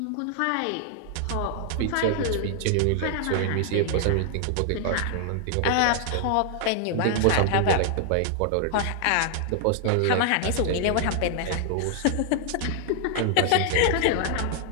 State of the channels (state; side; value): different; both; correlation 0.00